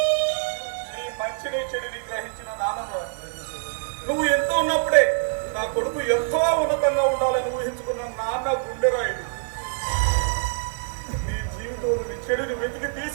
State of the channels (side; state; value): left; silent; 62 dB below the other